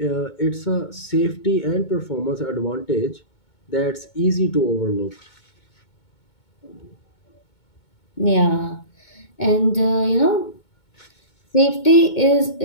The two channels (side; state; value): right; late; 2.2 ms